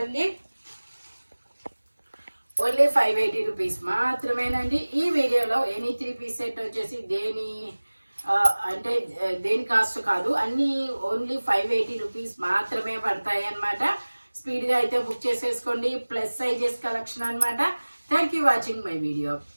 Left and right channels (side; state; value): both; inverted; correlation -1.00